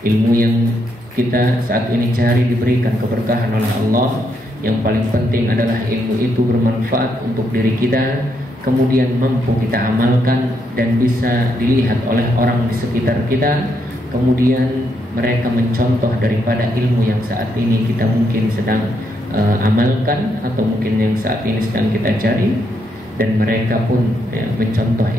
ilmu yang kita saat ini cari diberikan keberkahan oleh Allah. Yang paling penting adalah ilmu itu bermanfaat untuk diri kita, kemudian mampu kita amalkan dan bisa dilihat oleh orang di sekitar kita. Kemudian mereka mencontoh daripada ilmu yang saat ini kita mungkin sedang amalkan, atau mungkin yang saat ini sedang kita cari, dan mereka pun mencontoh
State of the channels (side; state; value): both; normal; correlation 0.78